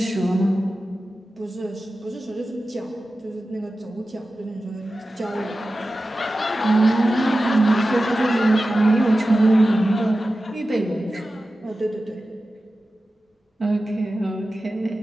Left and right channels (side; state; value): both; normal; correlation 0.94